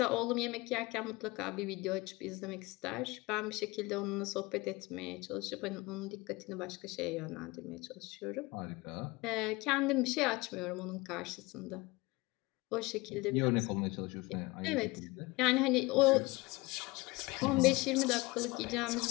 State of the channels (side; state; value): right; quieter; 23.1 dB